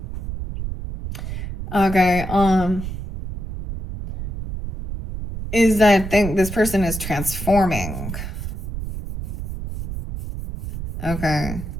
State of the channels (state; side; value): noise; right; rumble, 6 dB below the sound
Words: okay, is that this person is transforming. Okay.